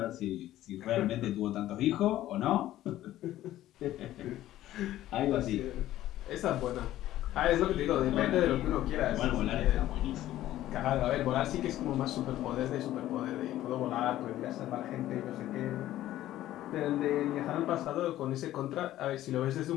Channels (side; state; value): right; quieter; 14.0 dB